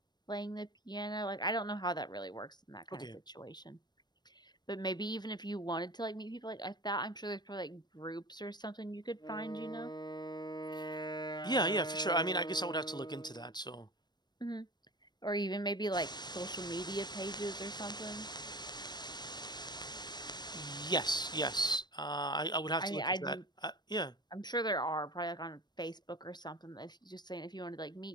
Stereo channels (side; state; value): right; late; 0.21 ms